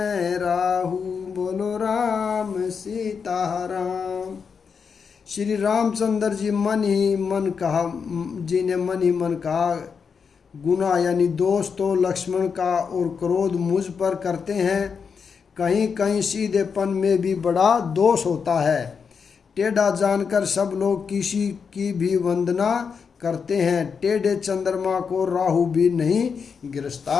राहु। बोलो राम सीताराम। श्री रामचंद्र जी ने मन ही मन कहा, गुना यानी दोष तो लक्ष्मण का और क्रोध मुझ पर करते हैं, कहीं कहीं सीधेपन में भी बड़ा दोष होता है। टेढ़ा जानकर सब लोग किसी की भी वंदना करते हैं, टेढ़े चंद्रमा को राहु भी नहीं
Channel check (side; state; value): right; quieter; 6.0 dB